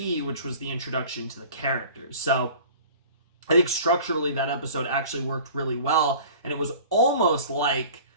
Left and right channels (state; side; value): inverted; both; correlation -0.43